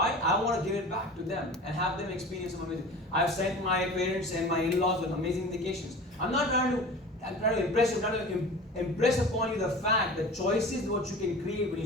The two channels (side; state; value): both; normal; correlation 0.37